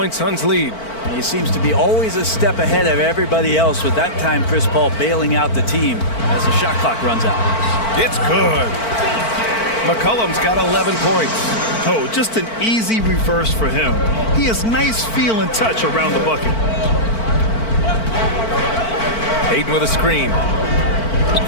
Suns lead. He seems to be always a step ahead of everybody else, with that time Chris Paul bailing out the team as the shot clock runs out. It's good. McCollum's got 11 points. Oh, just an easy reverse for him. He has nice feel and touch around the bucket. Hayden with a screen.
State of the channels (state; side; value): late; right; 4.5 ms